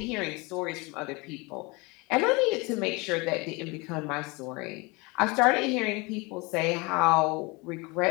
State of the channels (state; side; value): quieter; right; 26.4 dB